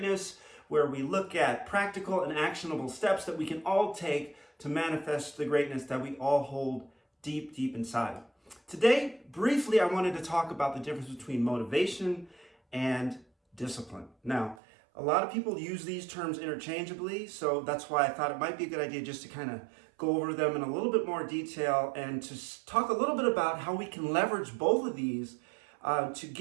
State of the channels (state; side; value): drops out; left; at 14.6 s